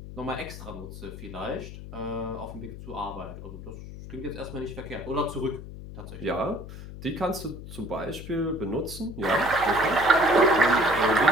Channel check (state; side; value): noise; left; hum, 12 dB below the sound